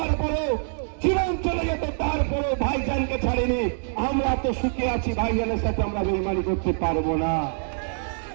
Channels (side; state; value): left; silent; 60 dB below the other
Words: পরেও জীবন চলে যেত, তারপরেও ভাইজানকে ছাড়েনি। আমরা তো সুখে আছি, ভাইজানের সাথে আমরা বেইমানি করতে পারবো না।